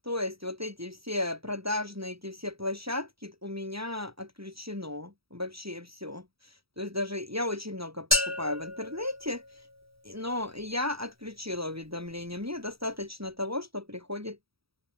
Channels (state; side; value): late; left; 0.76 ms